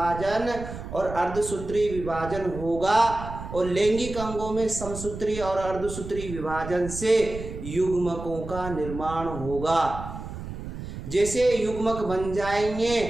और अर्धसूत्री विभाजन होगा, और लैंगिक अंगों में समसूत्री और अर्धसूत्री विभाजन से युग्मकों का निर्माण होगा। जैसे युग्मक बन जाएंगे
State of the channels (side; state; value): right; noise; rumble, 10 dB below the sound